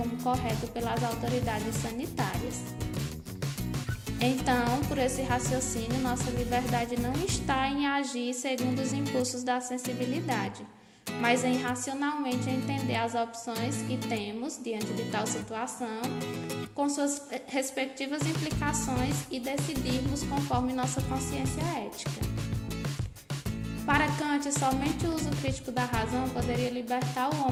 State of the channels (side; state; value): both; identical; correlation 1.00